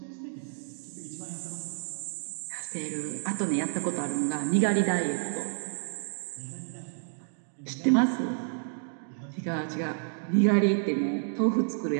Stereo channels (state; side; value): silent; left; digital silence